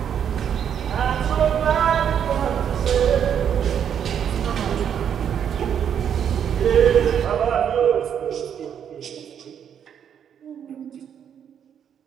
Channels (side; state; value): left; quieter; 8.6 dB